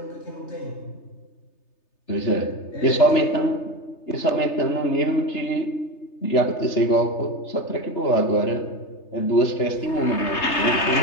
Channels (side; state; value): right; late; 3.3 ms